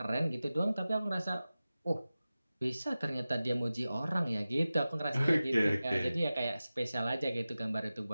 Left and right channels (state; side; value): inverted; both; correlation -0.95